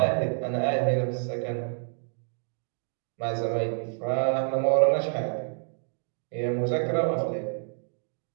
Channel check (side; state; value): left; silent; digital silence